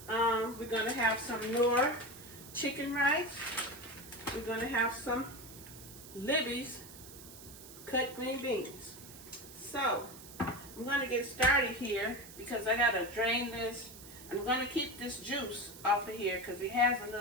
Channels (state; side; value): noise; right; hiss, 16 dB below the sound